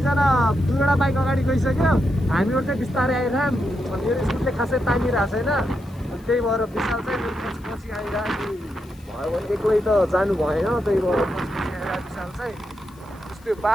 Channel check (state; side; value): noise; left; hiss, 29 dB below the sound